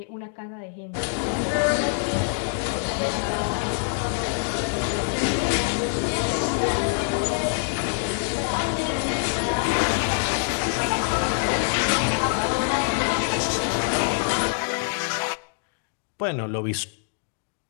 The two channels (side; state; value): right; silent; digital silence